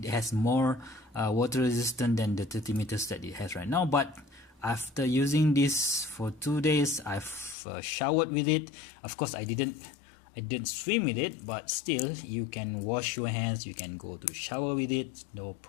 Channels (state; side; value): drops out; right; at 7.6 s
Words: has more water resistant than the 30 meters that it has right now, but after using this for 2 days, I've showered with it. Of course, I didn't swim with it, but still, you can wash your hands, you can go to shower with it, no